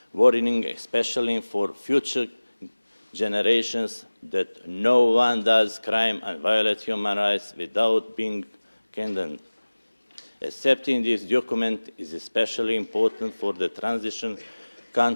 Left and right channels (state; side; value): inverted; both; correlation -1.00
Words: warning, especially for future generations, that no one does crime and violate human rights without being condemned. Accepting this document is especially important for the transition